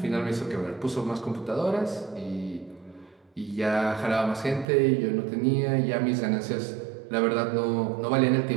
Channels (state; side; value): drops out; left; at 4.7 s